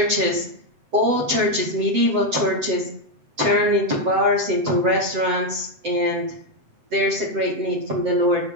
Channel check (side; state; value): left; late; 7.8 ms